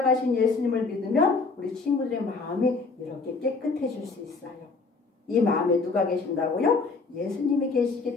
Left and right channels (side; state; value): right; quieter; 4.2 dB